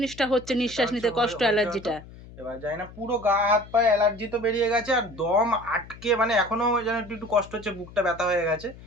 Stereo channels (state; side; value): noise; left; hum, 18 dB below the sound